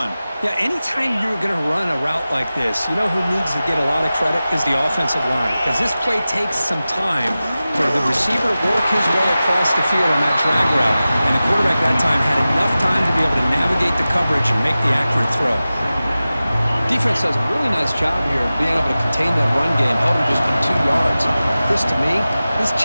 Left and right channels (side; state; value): both; inverted; correlation -0.95